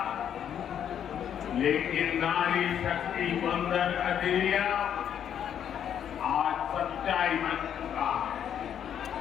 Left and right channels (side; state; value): right; quieter; 9.2 dB